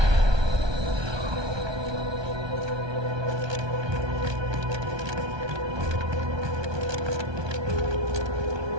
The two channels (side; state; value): left; late; 1.2 ms